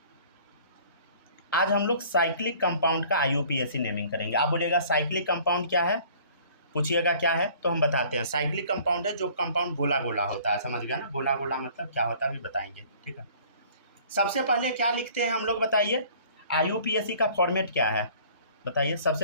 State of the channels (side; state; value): both; inverted; correlation -0.52